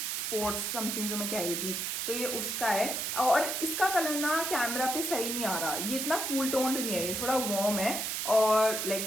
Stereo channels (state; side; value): noise; right; hiss, 2 dB below the sound